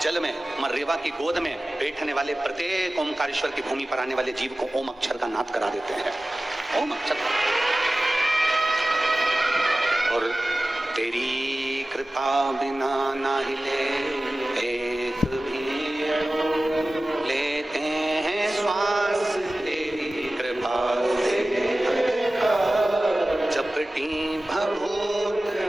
जल में, मां रेवा की गोद में बैठने वाले प्रत्येक ओमकारेश्वर की भूमि पर आने वाले जीव को ओम अक्षर का नाद करा देते हैं। ओम अक्षर। और तेरी कृपा बिना ना हिले एक भी, लेते हैं श्वास तेरी कृपा से, चपटी भभूत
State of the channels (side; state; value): both; normal; correlation 0.96